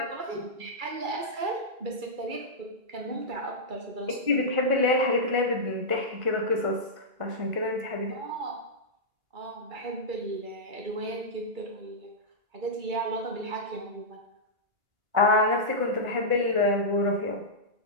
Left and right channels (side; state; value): left; late; 2.3 ms